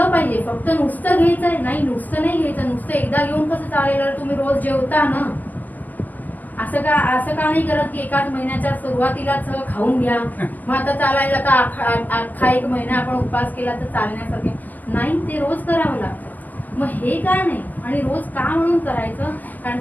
पाहिजे. फक्त नुसतं घ्यायचंय नाही, नुसतं नाही घ्यायचं. नुसतं एकदा घेऊन कसं चालेल, तुम्ही रोज जेवता ना, असं का नाही करत की एकाच महिन्याच्या सुरुवातीलाच खाऊन घ्या, मग आता चालायला तर अख्खा 1 महिना आपण उपवास केला तर चालण्यासारखे नाही, ते रोज करावं लागतं. मग हे का नाही आणि रोज का म्हणून करायचं. कारण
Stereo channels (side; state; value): right; late; 0.085 ms